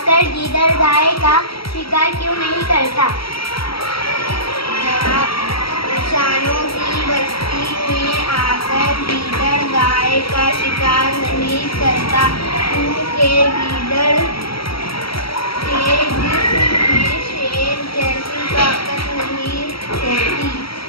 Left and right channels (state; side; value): late; right; 0.75 ms